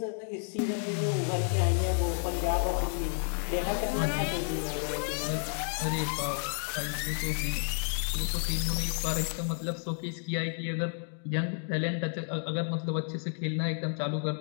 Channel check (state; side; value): silent; right; 57 dB below the other